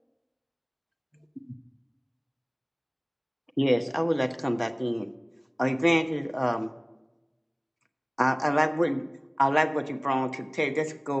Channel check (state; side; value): identical; both; correlation 1.00